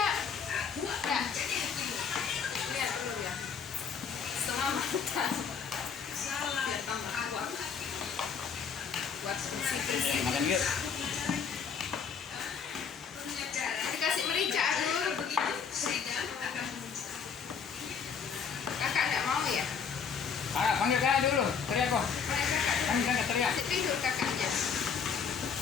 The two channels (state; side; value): quieter; right; 6.5 dB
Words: Enggak. Lihat telur ya. Setengah matang. Biar tambah kuat. Buat bersih-bersih. Makan yuk. Dikasih merica dulu begitu. Kakak enggak mau ya? Panggil kakak dulu. Teriak kok. Panggil kakak teriak. Masih tidur kakaknya.